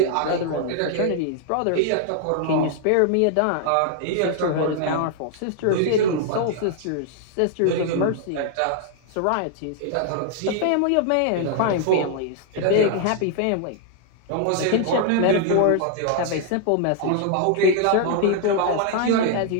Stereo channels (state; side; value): different; both; correlation 0.00